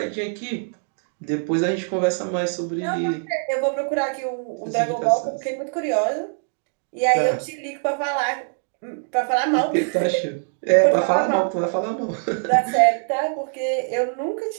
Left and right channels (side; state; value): left; silent; digital silence